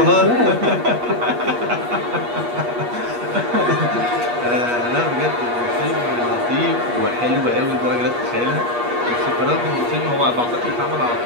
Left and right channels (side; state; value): left; late; 8.4 ms